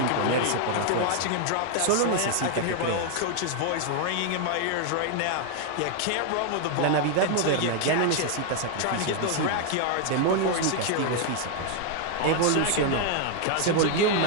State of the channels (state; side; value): different; both; correlation 0.00